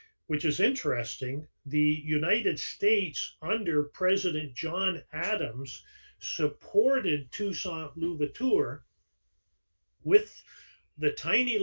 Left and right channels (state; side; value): inverted; both; correlation -1.00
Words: which is interesting, the United States under President John Adams supported Toussaint Louverture with the tiny